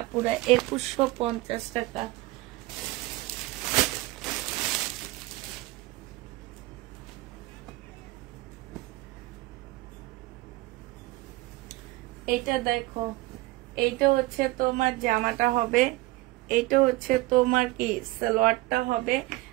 আপুরা 2150 টাকা। এটা দেখো, এইটা হচ্ছে তোমার জামাটা হবে, এইটা হচ্ছে তোমার কি সালোয়ারটা হবে,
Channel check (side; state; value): left; quieter; 19.7 dB